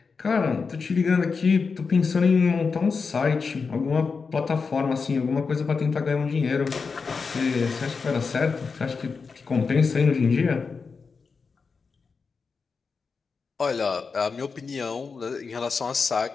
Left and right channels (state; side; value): quieter; right; 5.0 dB